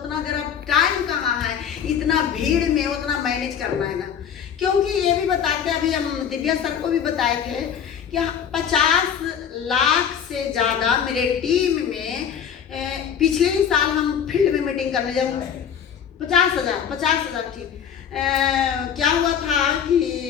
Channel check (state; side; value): quieter; right; 8.2 dB